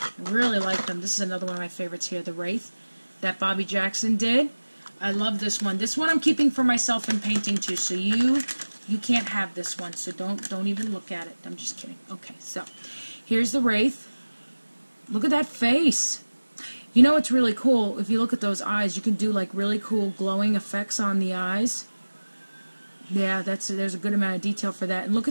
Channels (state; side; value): inverted; both; correlation -1.00